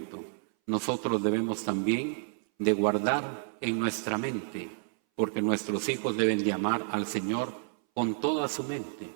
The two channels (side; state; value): left; silent; 58 dB below the other